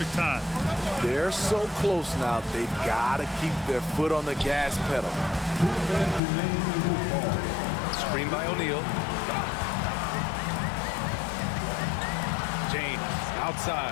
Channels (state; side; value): drops out; right; at 6.2 s